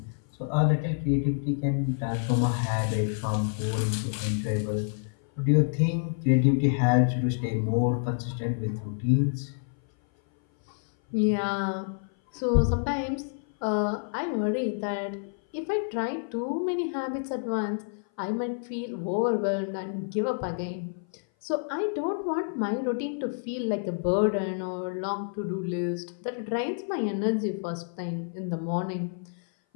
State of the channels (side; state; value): right; silent; 57 dB below the other